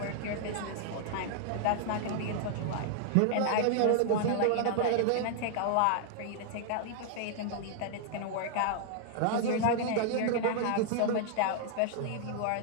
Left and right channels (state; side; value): different; both; correlation -0.01